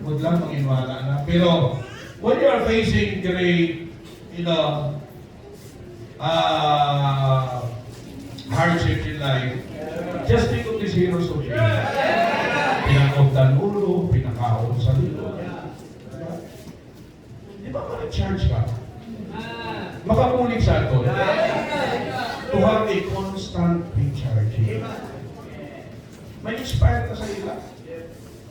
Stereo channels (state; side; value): identical; both; correlation 1.00